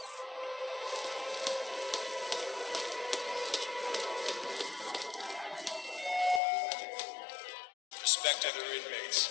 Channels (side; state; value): right; drops out; at 6.4 s